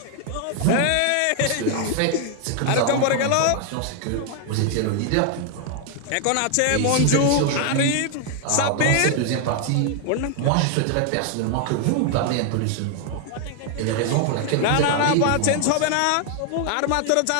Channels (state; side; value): different; both; correlation 0.00